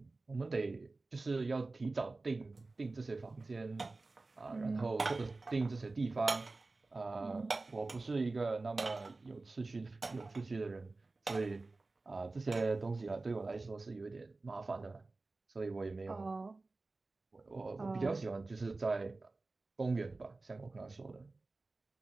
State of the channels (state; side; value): quieter; left; 3.4 dB